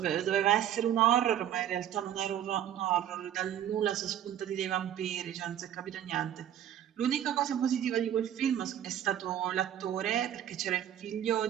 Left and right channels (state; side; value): quieter; left; 10.7 dB